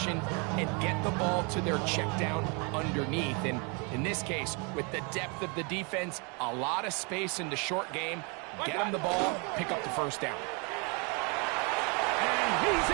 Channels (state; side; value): quieter; left; 32.6 dB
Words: and get the ball to their check down underneath. And in this case, with the depth of the defense, a lot of space in the short game, get them the ball, pick up the first down. And he's